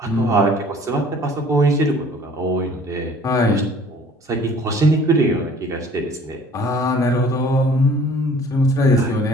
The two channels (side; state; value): both; normal; correlation 0.52